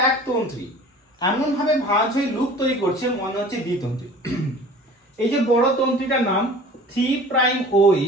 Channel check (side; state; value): both; normal; correlation 0.44